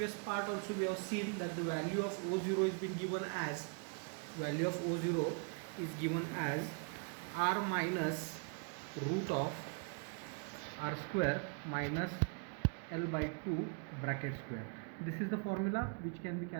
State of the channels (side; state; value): left; quieter; 37.3 dB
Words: part also we have seen that the value of O0 is been given as, value of O0 is given as r minus root of r square minus L by 2 bracket square. This is the formula which can be